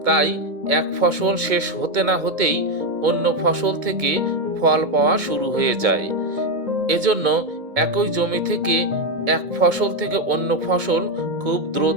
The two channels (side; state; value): left; late; 2.2 ms